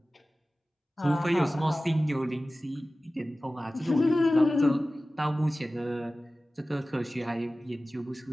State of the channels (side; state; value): both; normal; correlation 0.96